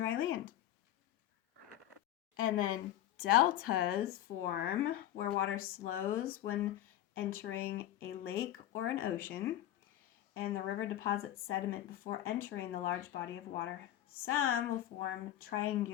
land. And then deltas form where water slows when entering a lake or an ocean, and the river deposits sediment before entering the large body of water. Some will form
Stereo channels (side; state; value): right; quieter; 12.7 dB